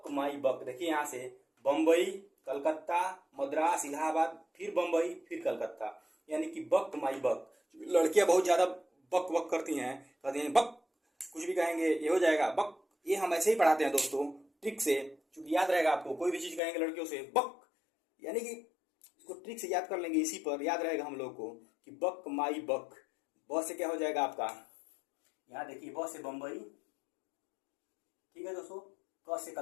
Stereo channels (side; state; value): right; drops out; at 16.6 s